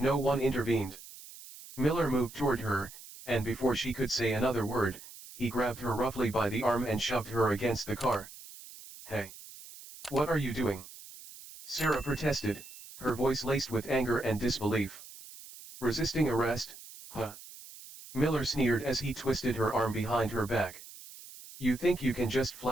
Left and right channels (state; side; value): noise; right; hiss, 17 dB below the sound